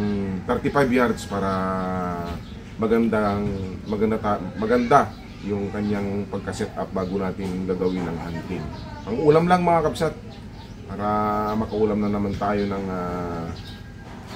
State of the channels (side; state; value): both; identical; correlation 1.00